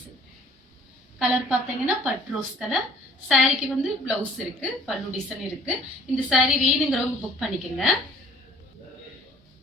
கலர் பாத்தீங்கன்னா பட்ரோஸ் கலர். சாரிக்கு வந்து பிளவுஸ் இருக்கு, பல்லு டிசைன் இருக்கு. இந்த சாரி வேணுங்கிறவங்க புக் பண்ணிக்கோங்க.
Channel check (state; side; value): normal; both; correlation 0.54